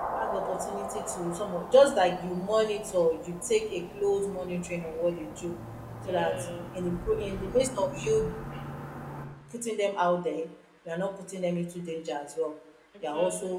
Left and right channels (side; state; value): both; identical; correlation 1.00